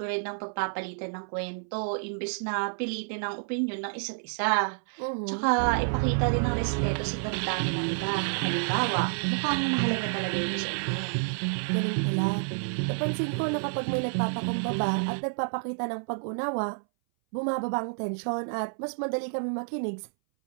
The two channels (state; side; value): silent; left; 58 dB below the other